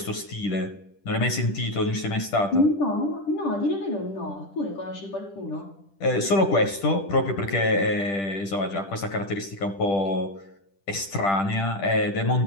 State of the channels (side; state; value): right; late; 10 ms